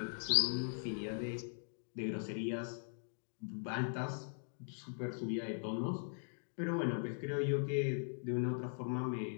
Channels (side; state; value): right; silent; digital silence